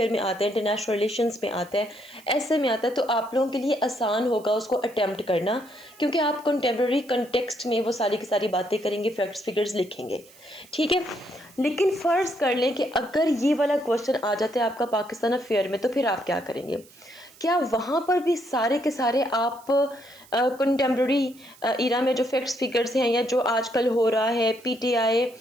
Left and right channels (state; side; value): noise; right; hiss, 25 dB below the sound